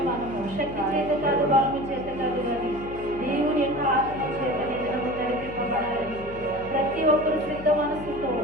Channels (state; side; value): noise; left; hum, 14 dB below the sound